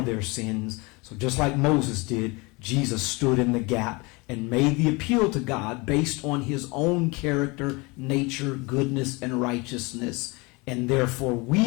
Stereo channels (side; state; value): right; quieter; 26.4 dB